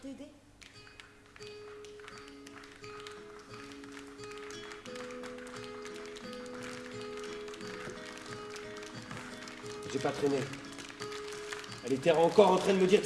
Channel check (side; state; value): both; identical; correlation 1.00